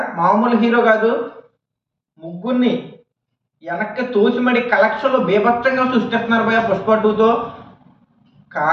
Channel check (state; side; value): identical; both; correlation 1.00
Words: మామూలు హీరో కాదు. ముగ్గురిని వెనక్కి తోసిమడి కలెక్షన్లో బీభత్సంగా సృష్టిస్తున్నారు భయ పుష్ప 2తో.